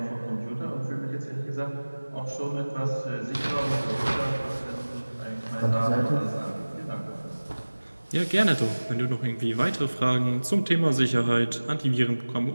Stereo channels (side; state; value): both; inverted; correlation -1.00